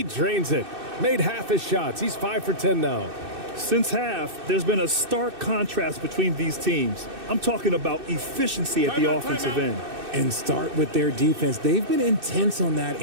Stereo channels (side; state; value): left; late; 2.6 ms